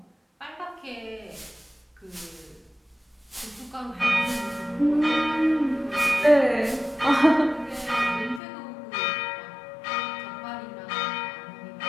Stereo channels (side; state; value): right; drops out; at 8.4 s